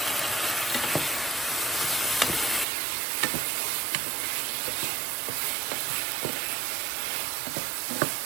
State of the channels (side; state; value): left; drops out; at 2.7 s